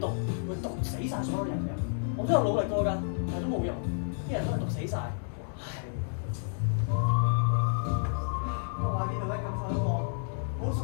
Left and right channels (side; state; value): right; silent; digital silence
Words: 毒會毒死晒所有人嘅。我都有努力過㗎，但係都冇用，啲人都係毒死晒。我話呢度咧感受一個好熟